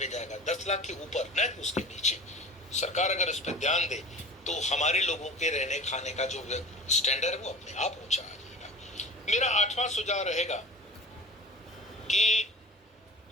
जाएगा, 10 लाख के ऊपर, न कि उसके नीचे। सरकार अगर इस पर ध्यान दे तो हमारे लोगों के रहने खाने का जो स्टैंडर्ड है वो अपने आप ऊंचा आ जाएगा। मेरा 8वां सुझाव रहेगा कि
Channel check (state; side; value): normal; both; correlation 0.37